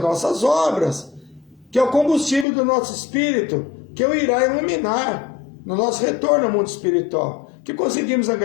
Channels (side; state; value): right; drops out; at 2.5 s